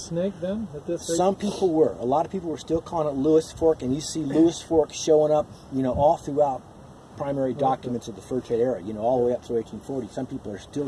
then at this stage? Some people were. A lot of people were still calling it Lewis Fork, and you see Lewis Fork showing up, you know, all throughout primary documents of the fur trade era, you know, all the way up through 1840. Some people are still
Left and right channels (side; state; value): both; identical; correlation 1.00